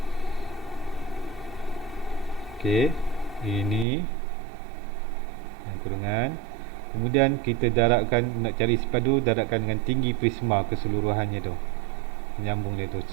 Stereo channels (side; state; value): left; drops out; at 3.9 s